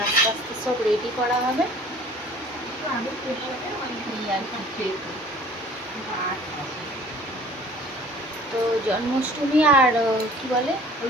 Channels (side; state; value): both; normal; correlation 0.50